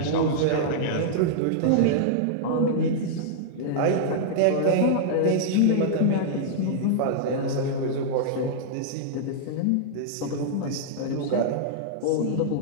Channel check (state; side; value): different; both; correlation -0.02